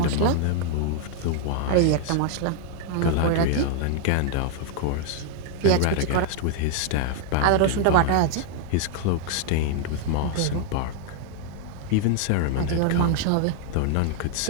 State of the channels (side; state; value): both; different; correlation 0.00